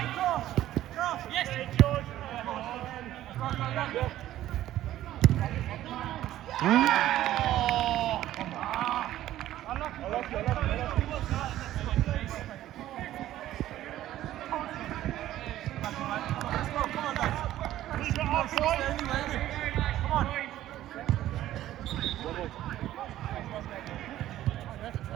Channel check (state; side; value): quieter; left; 13.6 dB